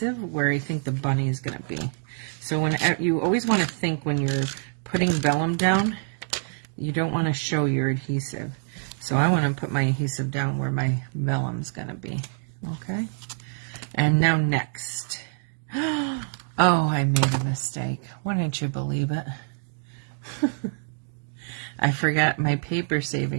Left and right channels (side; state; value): left; silent; 61 dB below the other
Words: where I think the bunny is going to be. So when you always want to think when you're putting vellum down, you don't want to show your adhesive. So I want to put my adhesive down where my vellum's going to be. Okay? And now next. Oh, I made a mistake. Wouldn't you believe it? I forgot my paper